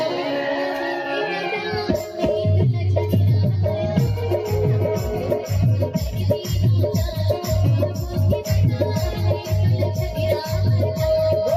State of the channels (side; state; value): both; identical; correlation 1.00